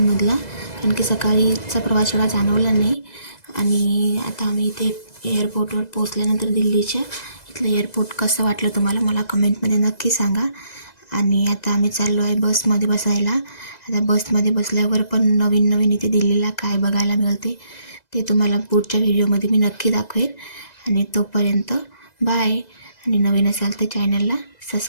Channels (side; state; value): right; late; 2.0 ms